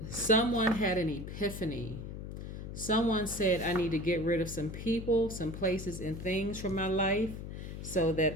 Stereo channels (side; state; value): left; noise; hum, 8 dB below the sound